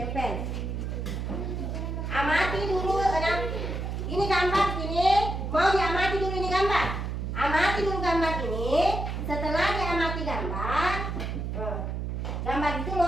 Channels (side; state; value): right; noise; hum, 3 dB below the sound